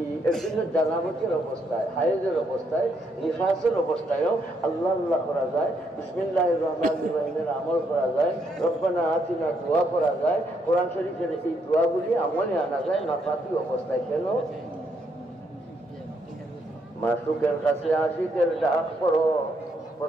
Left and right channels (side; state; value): both; normal; correlation 0.75